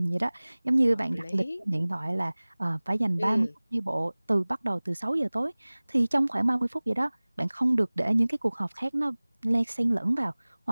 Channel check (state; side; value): inverted; both; correlation -1.00